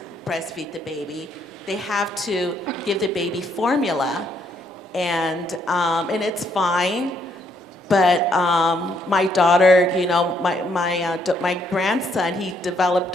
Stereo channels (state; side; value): normal; both; correlation 0.71